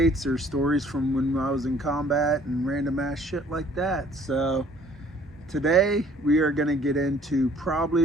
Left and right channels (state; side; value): normal; both; correlation 0.56